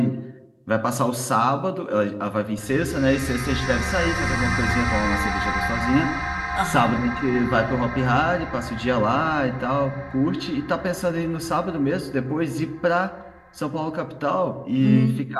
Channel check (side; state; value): both; identical; correlation 1.00